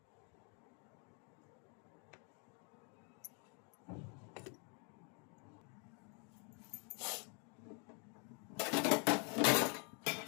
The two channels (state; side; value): quieter; right; 37.3 dB